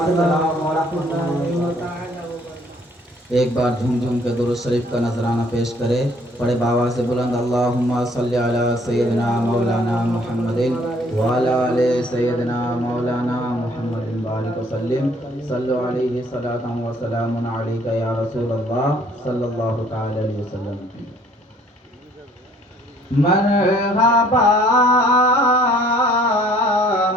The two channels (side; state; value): both; normal; correlation 0.60